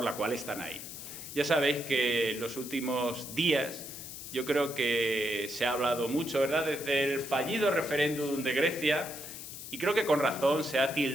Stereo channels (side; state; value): left; noise; hiss, 10 dB below the sound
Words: la cual están ahí. Ya sabéis que en los últimos días yo creo que se ha hablado mucho, ¿verdad?, desde el fallido referéndum de Grecia, y creo que con razón se ha